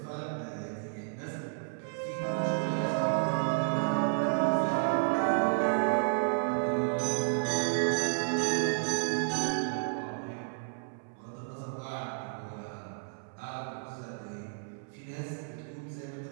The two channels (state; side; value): silent; left; 57 dB below the other